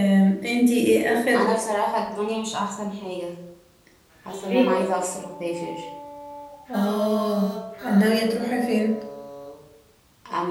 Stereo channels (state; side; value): identical; both; correlation 1.00